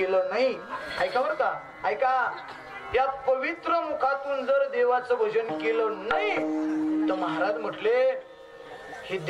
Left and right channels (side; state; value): both; identical; correlation 1.00